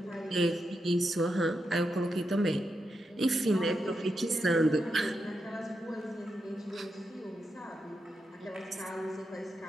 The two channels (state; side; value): normal; both; correlation 0.85